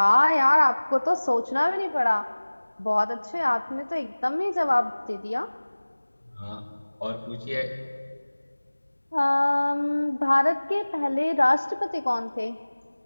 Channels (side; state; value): both; inverted; correlation -1.00